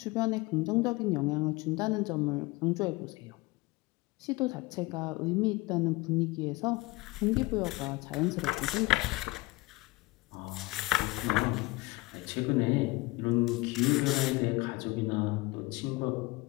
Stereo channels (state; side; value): quieter; right; 22.1 dB